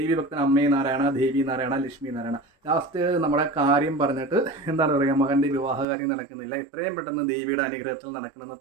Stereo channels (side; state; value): left; drops out; at 5.9 s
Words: ഭക്തൻ അമ്മേ നാരായണ, ദേവി നാരായണ, ലക്ഷ്മി നാരായണ. ലാസ്റ്റ് നമ്മുടെ കാര്യം പറഞ്ഞിട്ട് എന്താണ് പറയുക, മകൻ്റെ വിവാഹകാര്യം നടക്കുന്നില്ല, എത്രയും പെട്ടെന്ന് ദേവിയുടെ അനുഗ്രഹത്തിൽ നടക്കണമെന്ന്